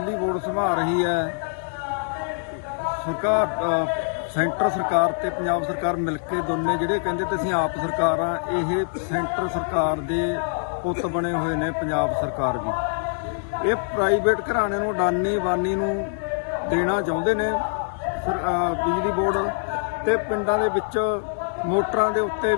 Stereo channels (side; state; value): right; silent; digital silence